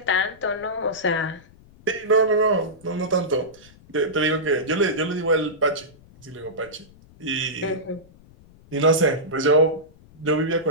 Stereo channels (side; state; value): left; noise; rumble, 25 dB below the sound